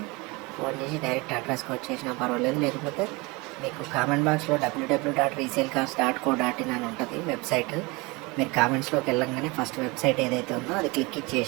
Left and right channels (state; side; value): quieter; left; 25.6 dB